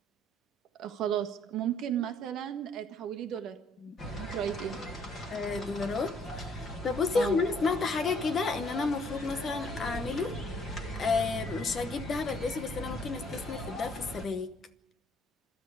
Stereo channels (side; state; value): both; normal; correlation 0.63